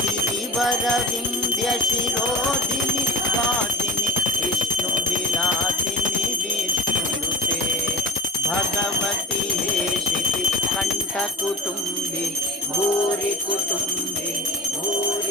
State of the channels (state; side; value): normal; both; correlation 0.31